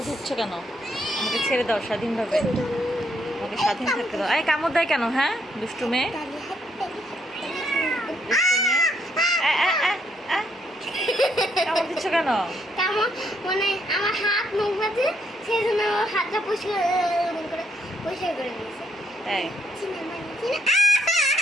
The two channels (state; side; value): normal; both; correlation 0.73